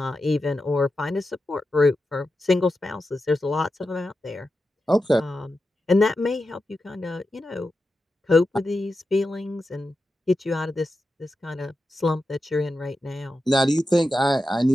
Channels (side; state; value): both; normal; correlation 0.90